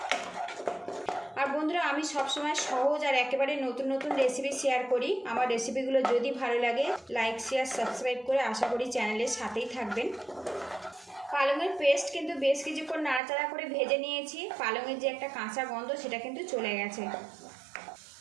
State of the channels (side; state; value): left; drops out; at 13.2 s